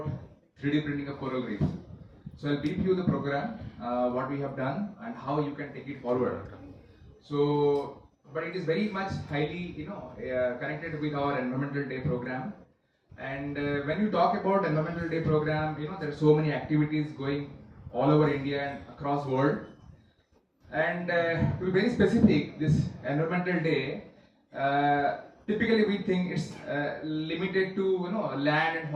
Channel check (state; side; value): identical; both; correlation 1.00